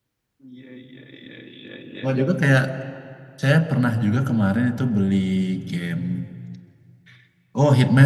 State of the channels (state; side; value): identical; both; correlation 1.00